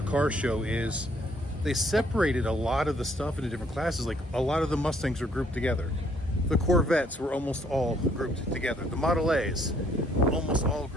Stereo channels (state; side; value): normal; both; correlation 0.65